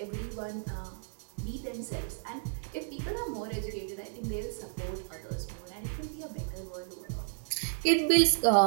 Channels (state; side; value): silent; left; digital silence